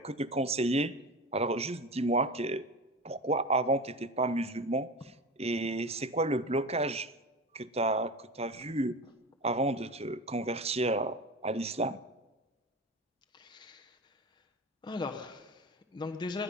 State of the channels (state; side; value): normal; both; correlation 0.28